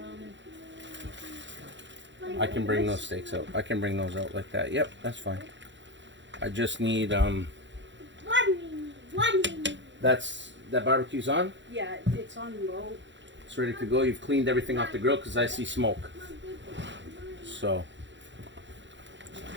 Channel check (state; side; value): late; left; 0.54 ms